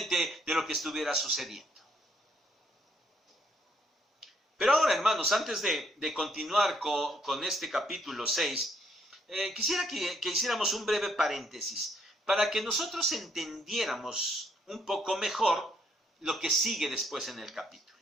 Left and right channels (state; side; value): normal; both; correlation 0.69